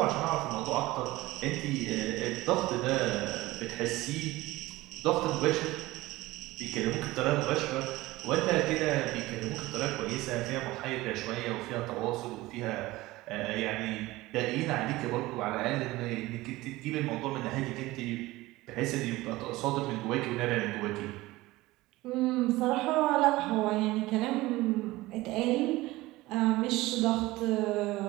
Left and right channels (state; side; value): quieter; left; 19.0 dB